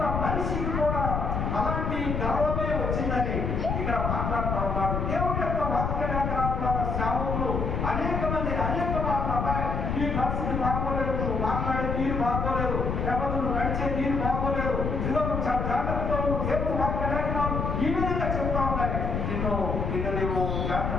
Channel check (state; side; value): noise; left; rumble, 1 dB below the sound